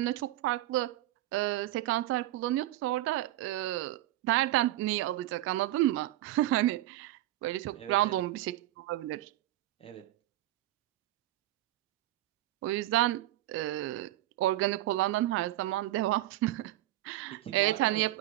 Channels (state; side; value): quieter; left; 15.5 dB